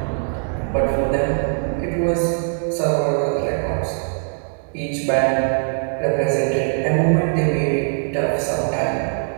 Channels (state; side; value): silent; left; digital silence